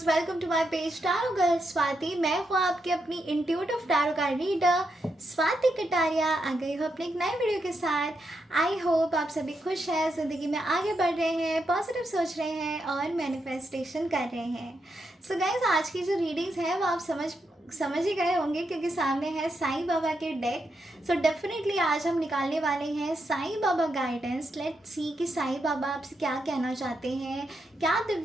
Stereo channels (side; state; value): both; normal; correlation 0.83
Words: welcome to my page tarot girl Swati. मैं हूँ आपकी अपनी intuitive tarot card reader Swati Kataria. आ गई हूँ अपने एक नए वीडियो के साथ। आई होप आप सभी खुश हैं, ज़िंदगी में आगे बढ़ रहे हैं, पॉजिटिव सोच रहे हैं और मैनिफेस्टेशन कर रहे हैं। सो गाइस, आज की जो रीडिंग्स है वो आप समझ ही गए होंगे क्योंकि सामने है साईं बाबा के डेक। सो डेफिनेटली आज हम निकालने वाले हैं Sai Baba guidance. Let's see कि साईं बाबा आपसे क्या कहना चाहते हैं, क्या